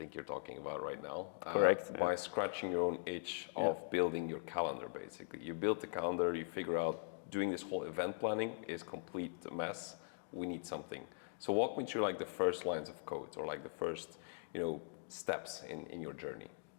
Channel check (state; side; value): silent; right; digital silence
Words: you're talking about right now. Correct. By scratching your own itch of building your calendar, basically. You built the calendar, you figure out doing this whole event planning is complete mess. We need something. So walk me through like the first lines of code, or like the first, steps in your journey.